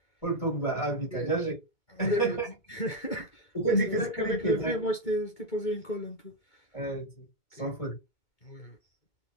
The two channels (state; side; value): late; right; 2.2 ms